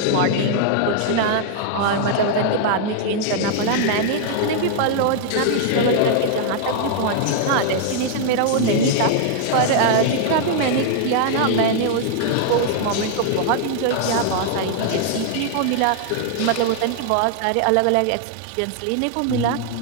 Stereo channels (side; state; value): both; different; correlation -0.01